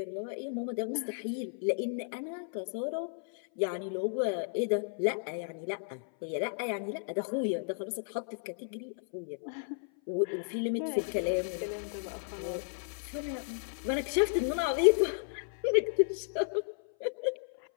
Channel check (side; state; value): right; silent; 55 dB below the other